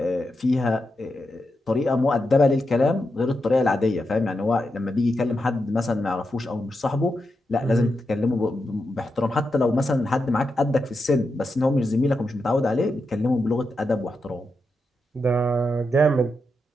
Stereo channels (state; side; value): normal; both; correlation 0.86